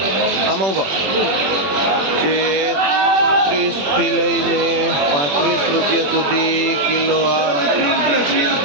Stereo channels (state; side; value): late; left; 21 ms